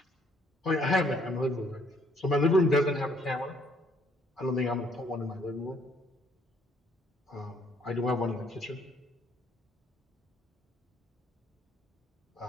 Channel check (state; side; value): normal; both; correlation 0.65